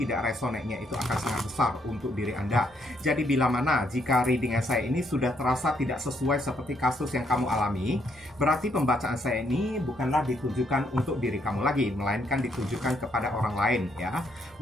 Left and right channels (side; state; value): both; normal; correlation 0.73